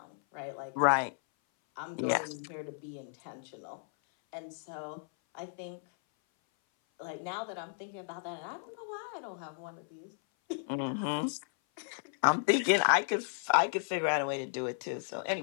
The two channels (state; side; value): silent; right; 55 dB below the other